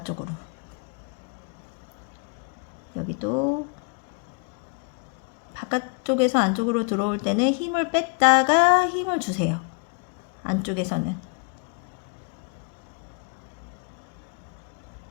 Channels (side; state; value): right; quieter; 34.4 dB